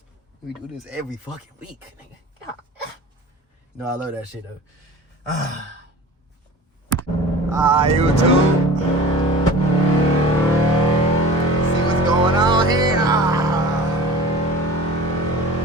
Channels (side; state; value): both; normal; correlation 0.39